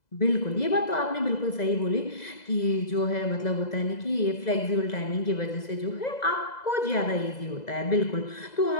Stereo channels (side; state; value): right; late; 2.0 ms